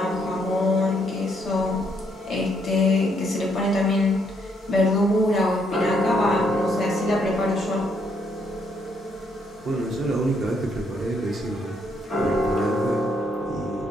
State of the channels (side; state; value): both; normal; correlation 0.72